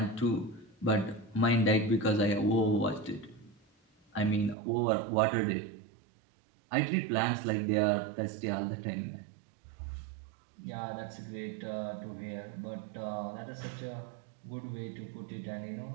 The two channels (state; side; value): drops out; left; at 4.5 s